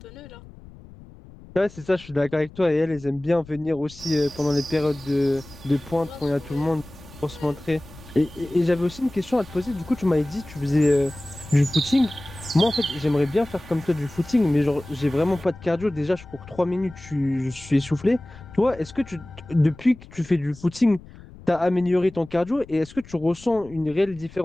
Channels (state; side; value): noise; left; rumble, 20 dB below the sound